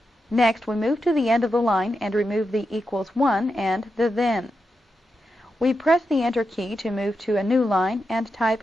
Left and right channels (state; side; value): normal; both; correlation 0.87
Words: Next, we move to the end of the line and remove the equals 1 and the then. We press the Enter key to move to a new line and type